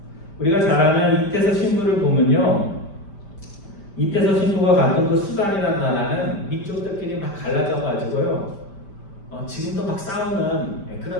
우리가 잘 아는 이태서 신부를 보면요 이때서 신부가 갔던 그 수단이라는 나라는 민족들끼리 막 갈라져 가지고요. 지금도 막 싸우는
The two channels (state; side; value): late; right; 5.1 ms